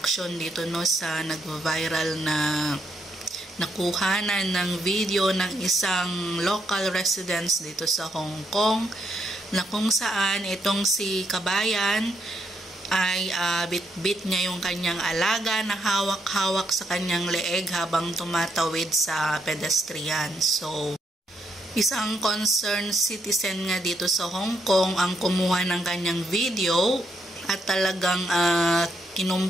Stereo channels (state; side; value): normal; both; correlation 0.77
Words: dito no sa nag-viral na nakuhanan ng video ng isang local residents dito sa Hong Kong na kung saan itong si Kabayan ay bit-bit niya yung kanyang alaga na hawak-hawak sa kanyang leeg habang tumatawid sa pedestrian. So isang concerned citizen nga dito sa Hong Kong ang kumuha ng kanyang video at talagang